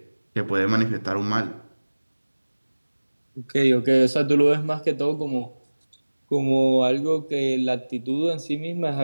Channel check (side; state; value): both; inverted; correlation -1.00